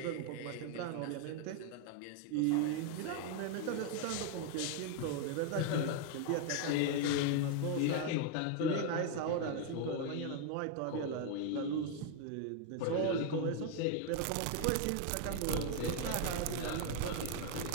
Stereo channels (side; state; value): both; different; correlation 0.01